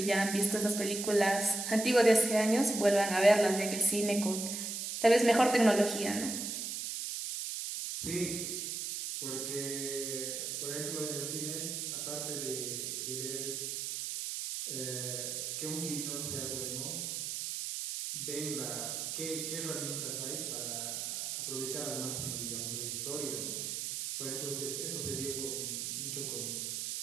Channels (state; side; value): noise; right; hiss, 3 dB below the sound